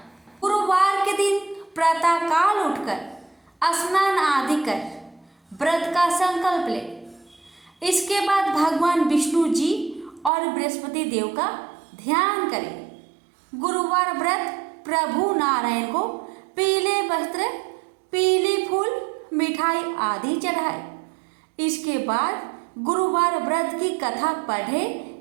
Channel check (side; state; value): left; drops out; at 10.3 s